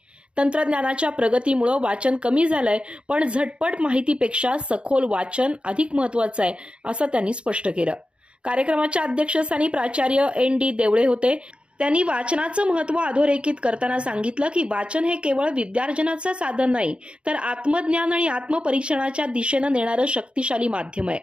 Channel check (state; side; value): late; left; 0.056 ms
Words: तंत्रज्ञानाच्या प्रगतीमुळे वाचन कमी झालंय, पण झटपट माहितीपेक्षा सखोल वाचन अधिक महत्त्वाचं आहे, असं त्यांनी स्पष्ट केलं। कार्यक्रमाच्या अध्यक्षस्थानी प्राचार्य एन.डी. देवळे होते। त्यांनी वाचनाचं महत्त्व अधोरेखित करताना सांगितलं की वाचन हे केवळ विद्यार्जनाचं साधन नाही, तर आत्मज्ञान आणि आत्मपरीक्षणाच्या दिशेनं नेणारं शक्तिशाली माध्यम आहे।